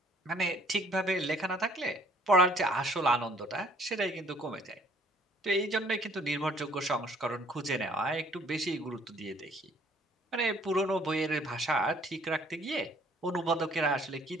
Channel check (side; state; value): both; normal; correlation 0.60